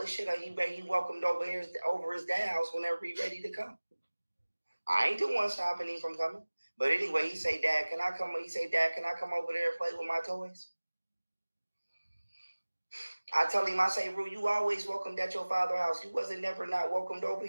shit. He welcomed over his dad's house whenever he ready to come. I ain't the one stopping him from coming. But anyway, he say, Dad, can I come? He say, Dad, can I come over there and play with my toys? I tell him, I say, Rue, you always welcomed at your father's house. You wasn't never not welcomed over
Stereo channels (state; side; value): inverted; both; correlation -1.00